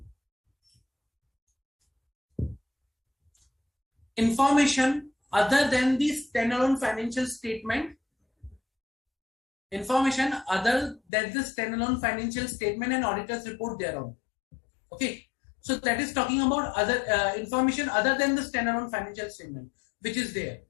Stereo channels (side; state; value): right; drops out; at 11.0 s